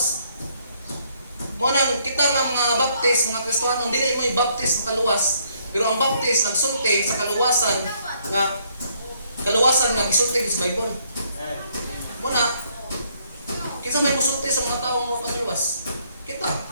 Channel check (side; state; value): both; inverted; correlation -0.69